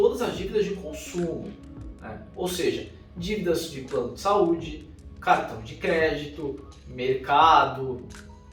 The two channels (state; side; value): identical; both; correlation 1.00